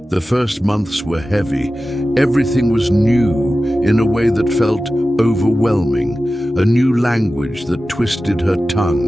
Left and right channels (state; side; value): normal; both; correlation 0.95